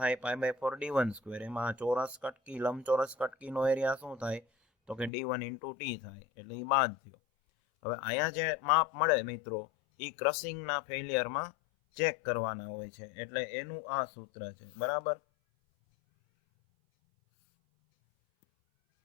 π/4 d1². એમાં ચોરસ કટકી, લંબચોરસ કટકીનો એરિયા શું થાય? તો કે d1 × t થાય. એટલે એ બાદ થયો. હવે અહીંયા જે માપ મળે મિત્રો એ ક્રશિંગના ફેલિયરમાં ચેક કરવાના હોય છે, એટલે એનું આ સૂત્ર છે. બરાબર.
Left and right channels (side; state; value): right; drops out; at 5.1 s